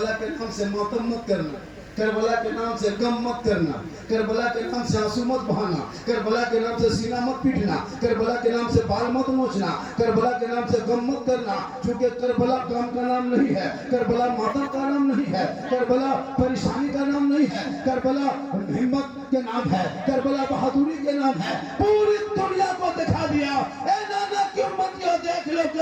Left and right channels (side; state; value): both; identical; correlation 1.00